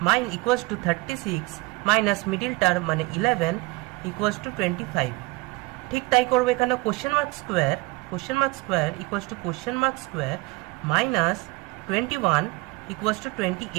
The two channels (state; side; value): quieter; left; 23.7 dB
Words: মাইন equals to 36 minus middle term মানে 11 ইকুয়ালস টু 25। ঠিক তাই করবো এখানে। Question mark square equals to question mark square minus 21 equals to